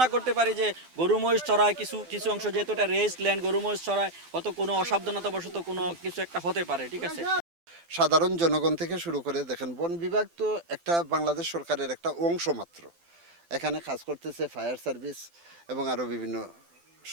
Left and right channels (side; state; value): left; late; 12 ms